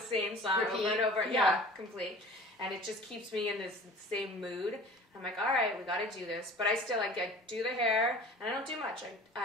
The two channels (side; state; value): both; normal; correlation 0.43